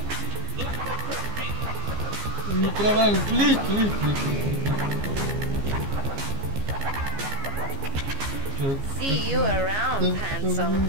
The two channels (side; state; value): left; late; 15 ms